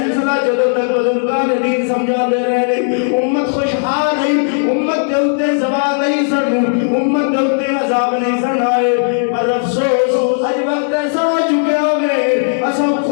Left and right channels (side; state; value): right; silent; digital silence